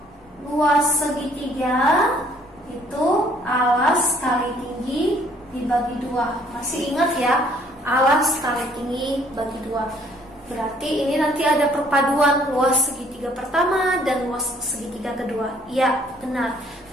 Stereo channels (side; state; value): both; normal; correlation 0.61